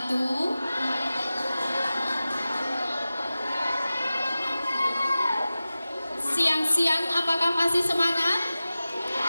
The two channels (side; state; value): both; inverted; correlation -0.95